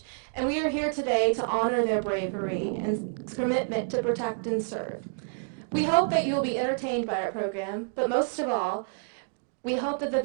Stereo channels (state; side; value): silent; left; digital silence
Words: and we are here today to honor their bravery and commitment to protect and serve. We hope that you will be entertained by our program, but most of all, we hope that the